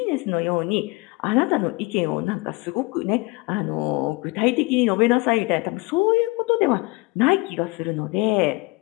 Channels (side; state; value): right; quieter; 24.1 dB